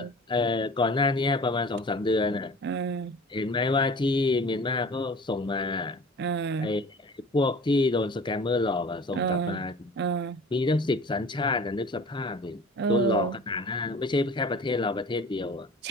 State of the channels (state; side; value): normal; both; correlation 0.43